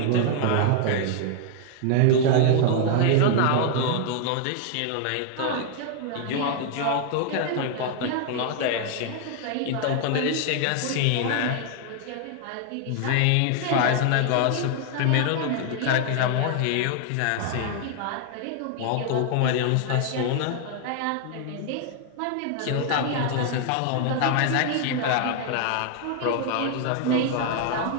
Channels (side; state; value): both; different; correlation 0.00